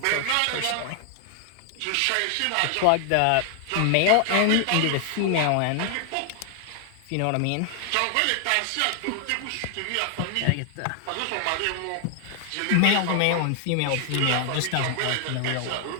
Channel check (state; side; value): different; both; correlation 0.00